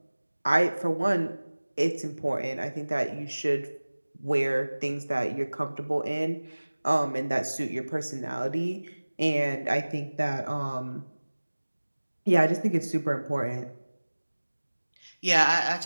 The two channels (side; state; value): both; inverted; correlation -1.00